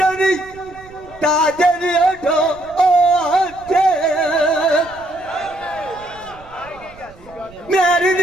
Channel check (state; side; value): noise; right; rumble, 23 dB below the sound